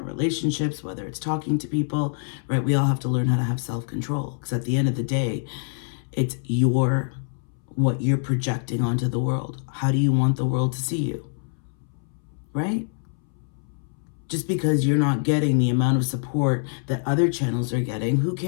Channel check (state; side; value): silent; right; 62 dB below the other